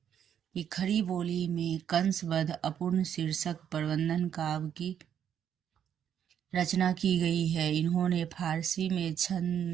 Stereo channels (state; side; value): quieter; left; 9.0 dB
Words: कि खड़ी बोली में कंसबद्ध अपूर्ण शीर्षक प्रबंधन काव्य की रचना की गई है। इन्होंने फारसी में